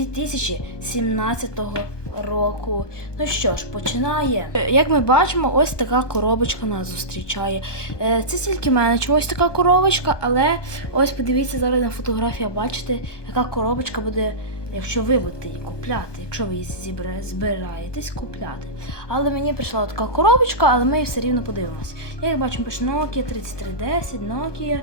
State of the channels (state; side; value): late; right; 1.2 ms